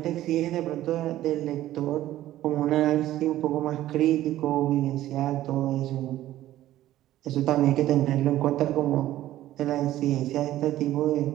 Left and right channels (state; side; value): quieter; left; 14.1 dB